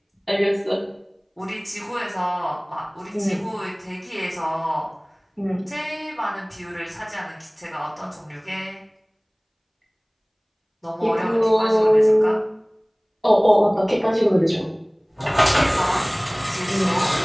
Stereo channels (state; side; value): identical; both; correlation 1.00